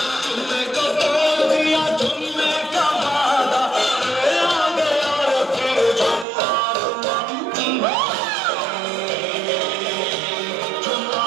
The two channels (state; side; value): drops out; left; at 6.2 s